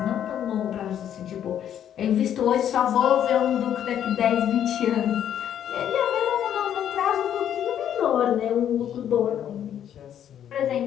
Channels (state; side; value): quieter; right; 10.0 dB